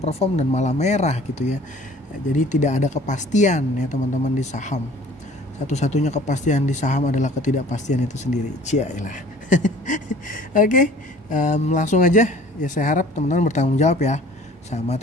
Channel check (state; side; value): normal; both; correlation 0.50